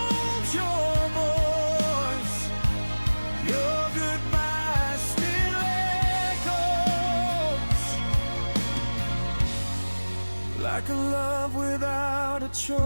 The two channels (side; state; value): both; inverted; correlation -1.00